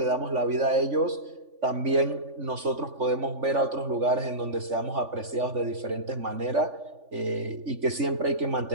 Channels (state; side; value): late; left; 3.5 ms